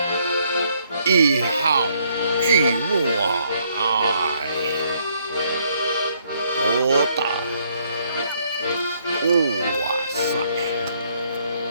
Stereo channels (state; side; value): inverted; both; correlation -0.70